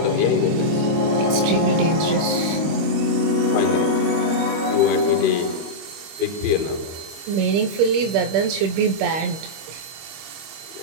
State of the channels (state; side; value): late; left; 25 ms